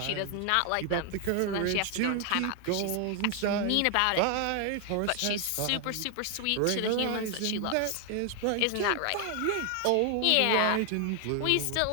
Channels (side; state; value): both; different; correlation 0.00